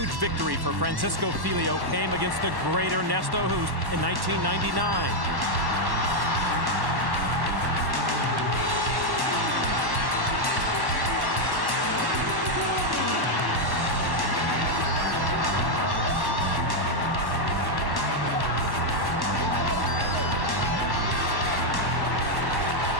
victory for Francisco Filho came against the great Ernesto Hoost in 1999.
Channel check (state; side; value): late; left; 1.1 ms